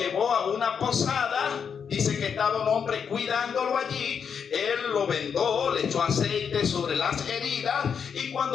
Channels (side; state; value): right; quieter; 6.9 dB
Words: a una posada. Dice que estaba un hombre cuidándolo allí. Él lo vendó, le echó aceite sobre las heridas, y